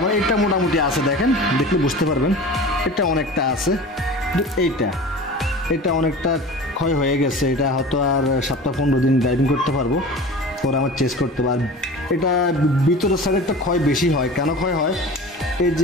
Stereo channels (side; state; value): both; normal; correlation 0.37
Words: আমার এটা মোটামুটি আছে, দেখেন দেখলে বুঝতে পারবেন। এটা অনেকটা আছে, এটা অনেকটা ক্ষয় হয়ে গেছে। এটা হয়তো আর 7-15 দিন ড্রাইভিং করতে পারবো, পরে আমার চেঞ্জ করতে পারবো। এটা ভিতরের সাইডে একটা ক্ষয় বেশি হয়। কেন ক্ষয় হয়? এই